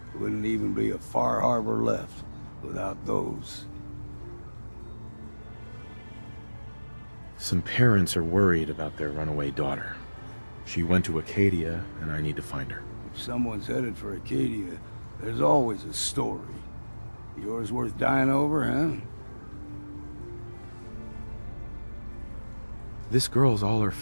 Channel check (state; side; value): inverted; both; correlation -1.00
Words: wouldn't even be a Far Harbor left without those. Some parents are worried about their runaway daughter. She went to Acadia, and I need to find her. If someone's headed for Acadia, there's always a story. Yours worth dying over, huh? This girl's all her